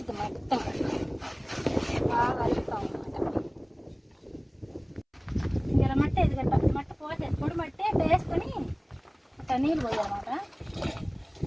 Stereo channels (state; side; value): identical; both; correlation 1.00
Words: మొత్తం బాగా అలుపుతాం అన్నమాట. ఇలా మట్టి ఇది గట్ట మట్టి పోతే పొడి మట్టి వేసుకొని అట్లా నీళ్ళు పోయాలన్నమాట.